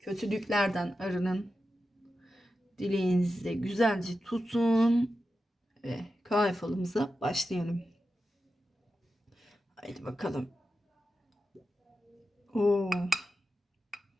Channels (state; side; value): normal; both; correlation 0.91